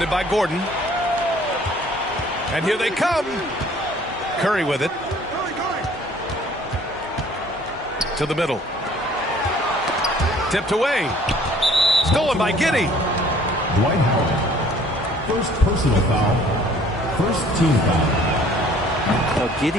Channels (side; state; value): both; normal; correlation 0.55